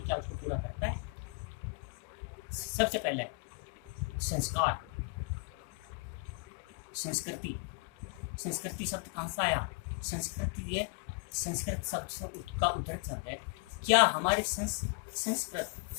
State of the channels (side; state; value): right; quieter; 33.5 dB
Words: उसको पूरा करता है? सबसे पहले संस्कार, संस्कृति। संस्कृति शब्द कहाँ से आया? संस्कृति ये संस्कृत शब्द का उद्धृत शब्द है। क्या हमारे संस्कृत,